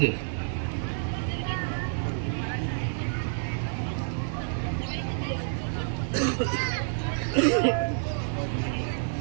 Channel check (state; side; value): silent; left; 58 dB below the other